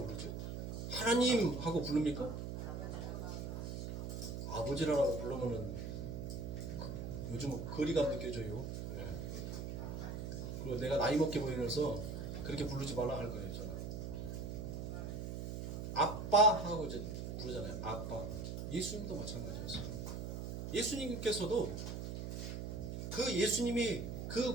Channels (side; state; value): right; noise; hum, 5 dB below the sound